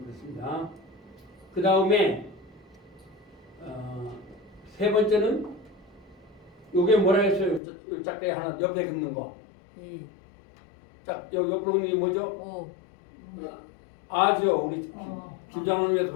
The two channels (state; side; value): drops out; right; at 7.6 s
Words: 그 다음에 세 번째는 요게 뭐라 했어요? 요 짝대기 하나 옆에 긋는 거. 이, 옆으로 긋는 게 뭐죠? 오, 아죠. 우리 김장훈님께서